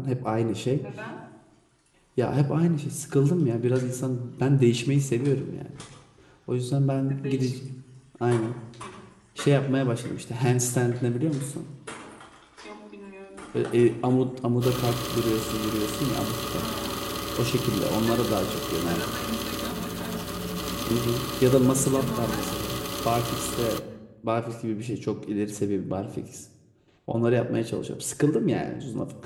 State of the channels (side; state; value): both; identical; correlation 1.00